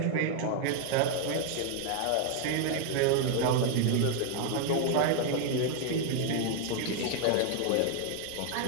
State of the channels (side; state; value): both; different; correlation 0.00